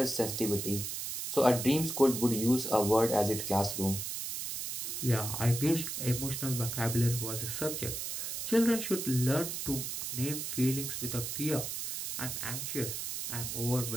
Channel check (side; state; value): right; noise; hiss, 4 dB below the sound